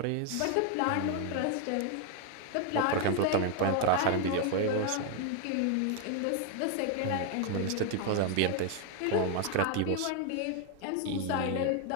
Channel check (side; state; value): both; different; correlation 0.01